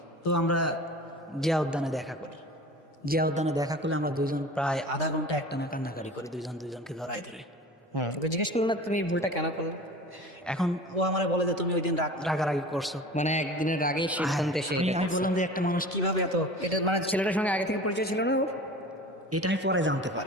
তো আমরা জিয়া উদ্যানে দেখা করি। জিয়া উদ্যানে দেখা করলে আমরা দুইজন প্রায় আধা ঘন্টা একটানা কান্নাকারি করি, দুইজনকে ধরাই ধরে। হুম, ওকে জিজ্ঞেস করলো না তুমি ভুলটা কেন করলে? এখন ও আমার বলে যে তুমি ওই দিন রাগারাগি করছো। মানে একদিনের আগেই সিদ্ধান্তে এসে আমি এটা আমি করছে। বললাম যে একটা মানুষ কিভাবে এত, এটা মানে ছেলেটার সঙ্গে আগে থেকে পরিচয় ছিল না ওর? এটা আমি পরে জানতে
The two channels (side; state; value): both; normal; correlation 0.39